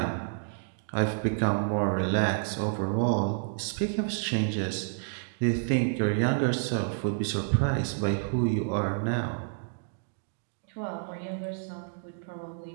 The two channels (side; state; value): left; silent; digital silence